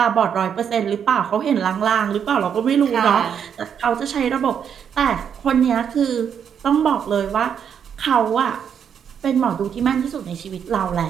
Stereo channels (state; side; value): quieter; left; 7.9 dB